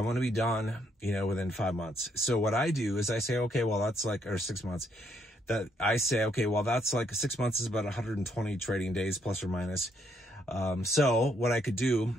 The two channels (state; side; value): normal; both; correlation 0.73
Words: want to be done, you know, within 5 months. So what I do is I say, okay, well, that's like, or 6 months, that I say, okay, well, that's like 6 months is about 120 trading days plus or minus. So what I could do